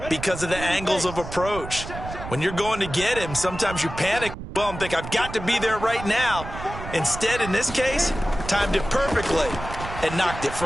because of the angles of approach. When you're going to get him, sometimes you panic well and think, I've got to be there right now. Instead, in this case, timed it perfectly and knocked it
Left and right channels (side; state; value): right; noise; rumble, 10 dB below the sound